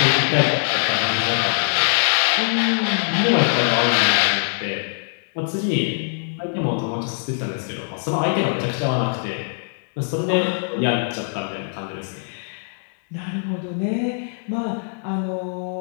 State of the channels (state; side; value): silent; right; digital silence